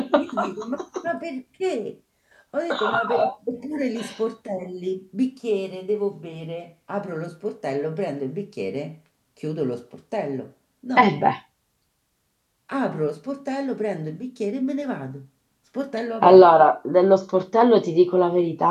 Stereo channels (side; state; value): both; identical; correlation 1.00